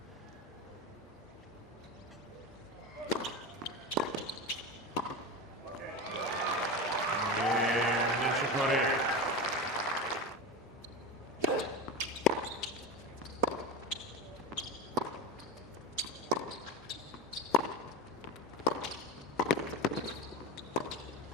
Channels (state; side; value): normal; both; correlation 0.22